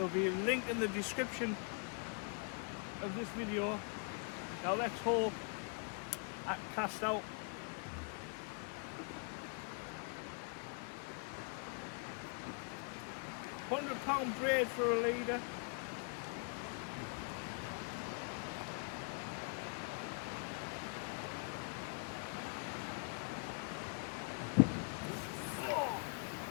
be a link in the description of this video. Now let's hope I can cast out. £100 braid for a leader.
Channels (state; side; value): quieter; right; 38.6 dB